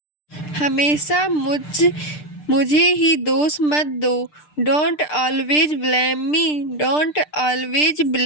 हमेशा मुझे ही दोष मत दो। Don't always blame me. Don't always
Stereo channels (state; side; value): late; right; 6.7 ms